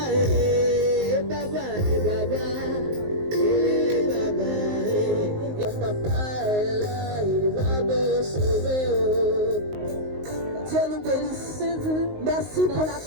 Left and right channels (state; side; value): late; left; 19 ms